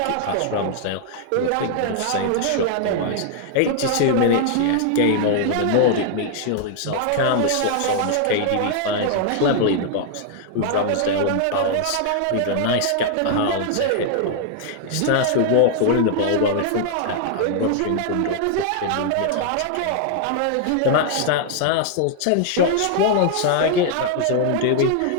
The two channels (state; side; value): different; both; correlation 0.00